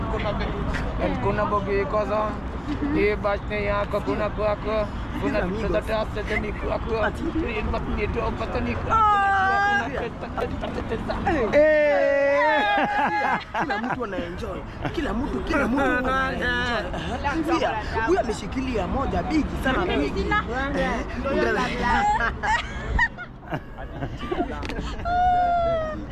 kuna bit, and kuna mbogi koza. Ye bachne yako, kuna kwako, kuna vitu za tafta tani kwako. Rin batni to patani kwako. Kila mtu anaenjoy. Kila mtu anaenjoy. Huyu ameshikilia moja bigi sana bigi.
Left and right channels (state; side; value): identical; both; correlation 1.00